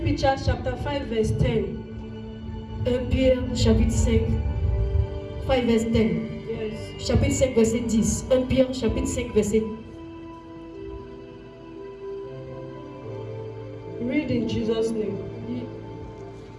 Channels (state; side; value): identical; both; correlation 1.00